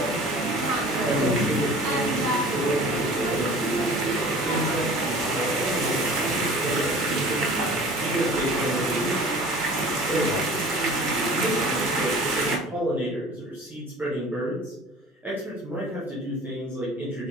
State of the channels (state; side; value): normal; both; correlation 0.44